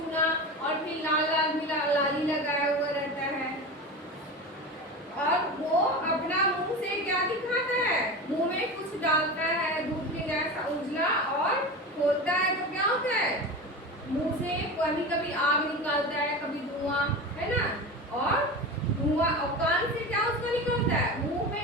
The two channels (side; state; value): both; normal; correlation 0.27